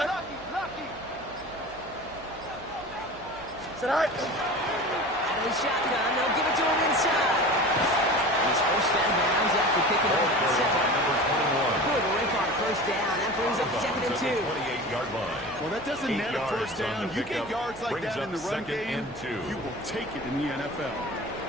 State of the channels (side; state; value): right; noise; hum, 22 dB below the sound